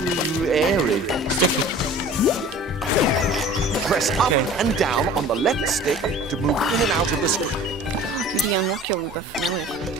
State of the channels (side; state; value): both; normal; correlation 0.44